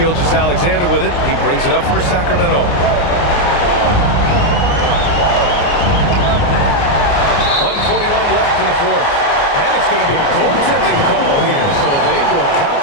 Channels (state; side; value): late; right; 29 ms